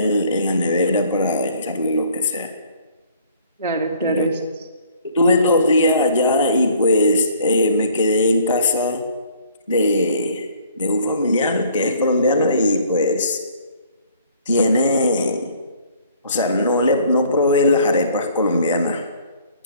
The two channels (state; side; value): inverted; both; correlation -0.57